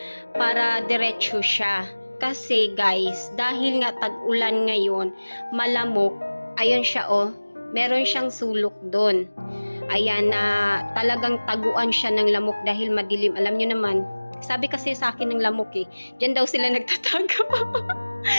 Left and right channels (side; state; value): both; inverted; correlation -1.00